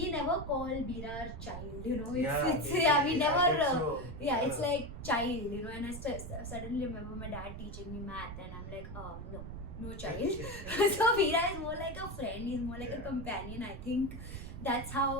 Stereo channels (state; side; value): noise; right; rumble, 9 dB below the sound